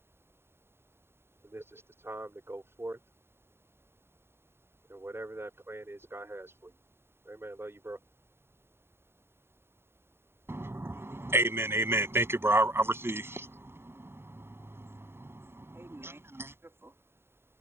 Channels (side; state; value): left; late; 0.11 ms